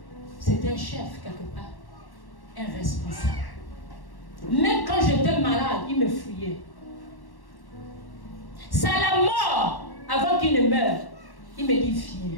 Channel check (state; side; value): late; right; 1.1 ms